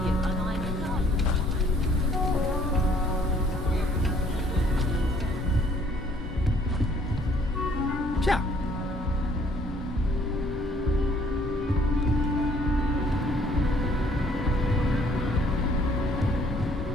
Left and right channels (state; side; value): normal; both; correlation 0.61